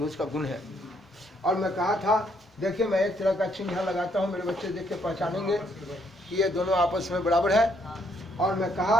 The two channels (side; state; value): both; normal; correlation 0.71